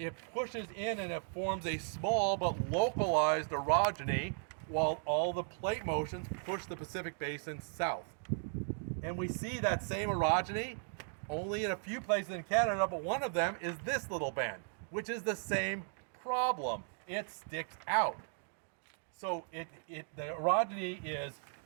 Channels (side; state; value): left; silent; 53 dB below the other